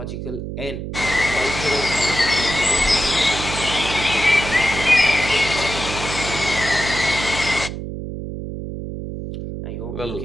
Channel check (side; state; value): right; noise; hum, 7 dB below the sound